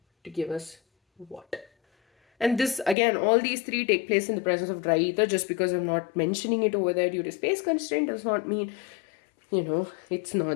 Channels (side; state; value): right; drops out; at 3.0 s